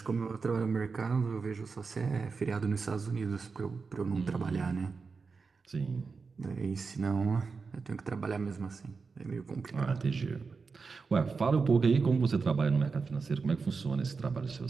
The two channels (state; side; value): quieter; left; 4.7 dB